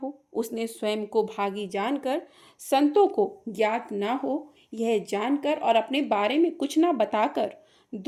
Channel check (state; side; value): identical; both; correlation 1.00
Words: हो। उसने स्वयं को भागी जानकर संतों को ज्ञात न हो यह जानकर और अपने बारे में कुछ न बताकर